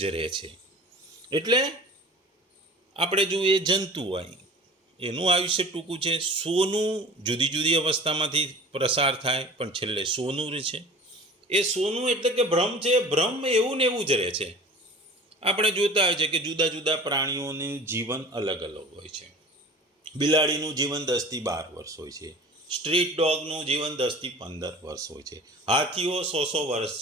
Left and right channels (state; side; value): normal; both; correlation 0.42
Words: રહે છે. એટલે આપણે જો એ જંતુ હોય એનું આયુષ્ય ટૂંકું છે. સોનું જુદી જુદી અવસ્થામાંથી પ્રસાર થાય પણ છેલ્લે સોનું રહે છે. એ સોનું એટલે કે ભ્રમ છે. ભ્રમ એવું ને એવું જ રહે છે. આપણે જોતા હોય છે કે જુદા જુદા પ્રાણીઓનું જીવન અલગ અલગ હોય છે. બિલાડીનું જીવન 10 થી 12 વર્ષ હોય છે. સ્ટ્રીટ ડોગનું જીવન 10 થી 15 વર્ષ હોય છે. હાથીઓ 100 વર્ષ